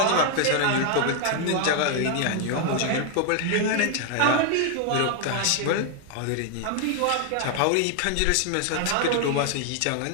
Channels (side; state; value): both; different; correlation 0.00